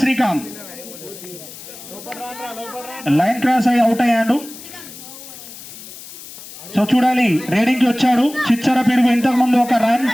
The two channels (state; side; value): noise; left; hiss, 15 dB below the sound